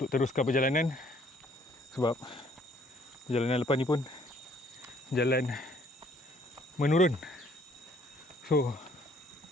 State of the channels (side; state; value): both; normal; correlation 0.62